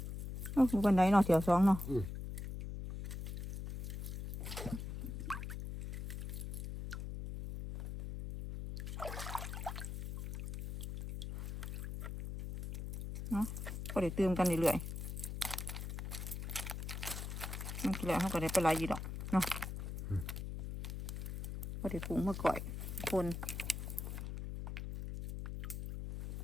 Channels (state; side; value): noise; left; hum, 6 dB below the sound